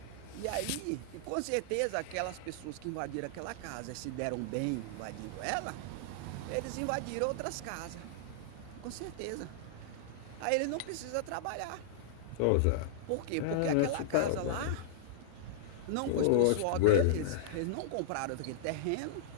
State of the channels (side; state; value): both; different; correlation -0.02